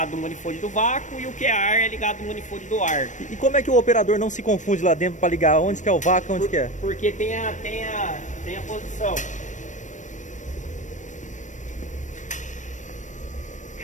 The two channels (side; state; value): right; late; 0.36 ms